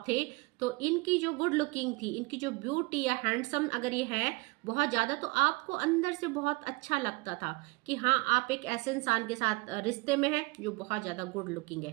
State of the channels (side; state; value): left; quieter; 25.4 dB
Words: थे तो इनकी जो गुड लुकिंग थी, इनकी जो ब्यूटी या हैंडसम अगर ये है बहुत ज़्यादा, तो आपको अंदर से बहुत अच्छा लगता था कि हाँ आप एक ऐसे इंसान के साथ रिश्ते में है जो बहुत ज़्यादा गुड लुकिंग है।